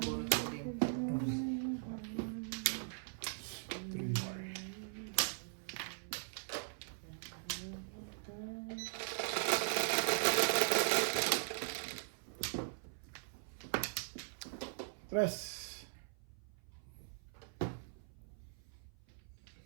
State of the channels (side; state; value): left; silent; 51 dB below the other